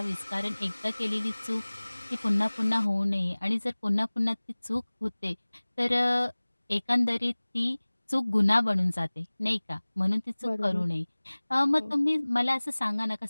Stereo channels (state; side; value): inverted; both; correlation -1.00